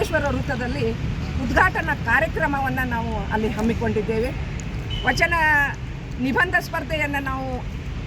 ವೃತ್ತದಲ್ಲಿ ಉದ್ಘಾಟನಾ ಕಾರ್ಯಕ್ರಮವನ್ನು ನಾವು ಅಲ್ಲಿ ಹಮ್ಮಿಕೊಂಡಿದ್ದೇವೆ. ವಚನ ನಿಬಂಧ ಸ್ಪರ್ಧೆಯನ್ನು ನಾವು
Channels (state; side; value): identical; both; correlation 1.00